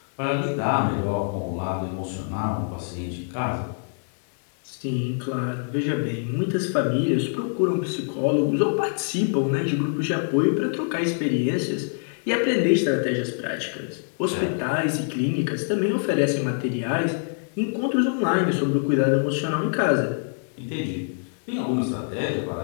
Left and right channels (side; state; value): right; silent; digital silence